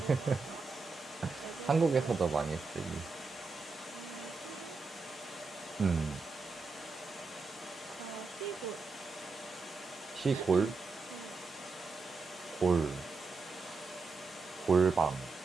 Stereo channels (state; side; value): quieter; left; 4.2 dB